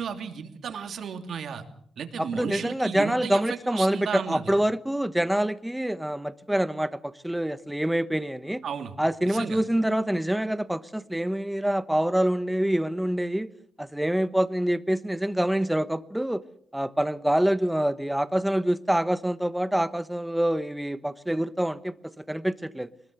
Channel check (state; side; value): normal; both; correlation 0.98